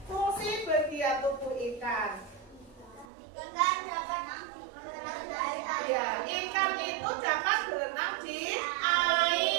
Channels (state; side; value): drops out; left; at 3.1 s